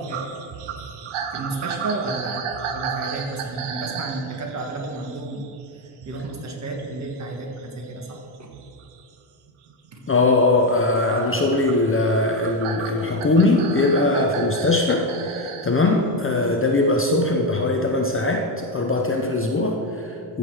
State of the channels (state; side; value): normal; both; correlation 0.09